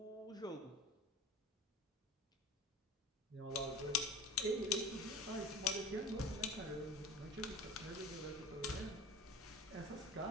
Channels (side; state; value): both; normal; correlation 0.36